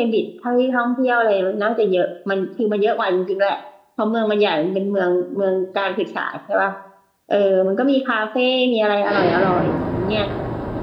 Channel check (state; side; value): identical; both; correlation 1.00